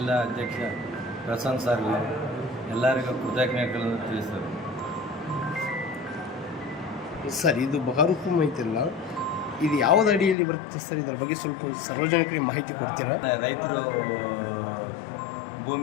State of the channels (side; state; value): right; drops out; at 10.4 s